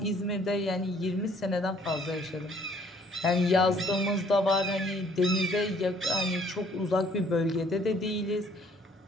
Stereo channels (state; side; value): normal; both; correlation 0.60